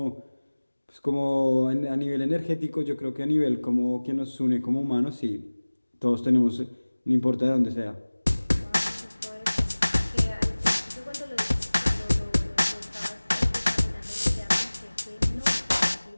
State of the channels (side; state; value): both; inverted; correlation -1.00